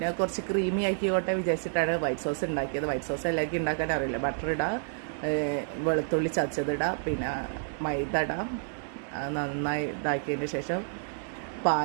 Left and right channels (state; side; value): silent; left; 58 dB below the other